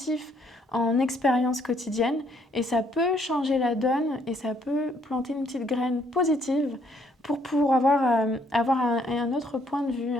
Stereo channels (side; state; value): both; normal; correlation 0.68